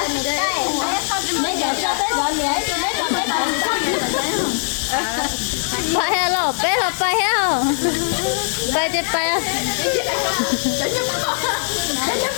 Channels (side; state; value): right; silent; digital silence